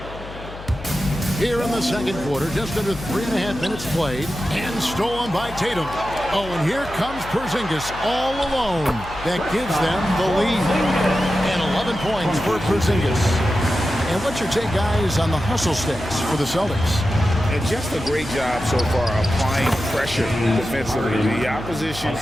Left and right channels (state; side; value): noise; left; hum, 14 dB below the sound